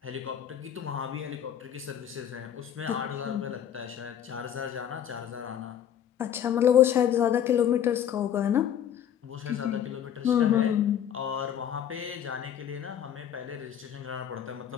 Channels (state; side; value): quieter; right; 9.7 dB